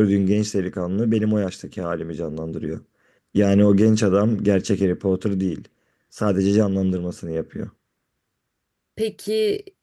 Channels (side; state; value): both; identical; correlation 1.00